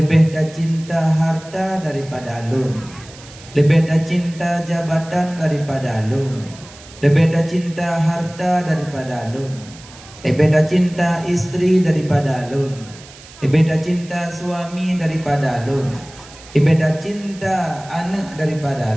tak cinta harta daripada alun, lebih tak cinta jabatan daripada alun, lebih tak cinta harta daripada alun, lebih tak cinta istri daripada alun, lebih tak cinta suami daripada alun, lebih tak cinta anak daripada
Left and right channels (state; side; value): noise; right; hiss, 20 dB below the sound